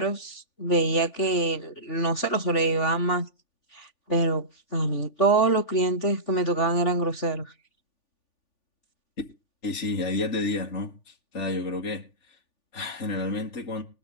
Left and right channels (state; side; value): late; right; 3.5 ms